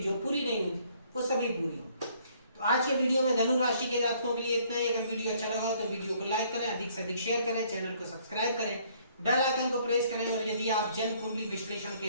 जो पूरी नहीं हुई थी, वो सभी पूरी होंगी। तो आज के वीडियो में धनु राशि के जातकों के लिए इतना ही। अगर वीडियो अच्छा लगा हो तो वीडियो को लाइक करें, अधिक से अधिक शेयर करें, चैनल को सब्सक्राइब करें, बेल आइकन को प्रेस करें, और यदि आप जन्म कुंडली विश्लेषण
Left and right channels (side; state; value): both; inverted; correlation -0.63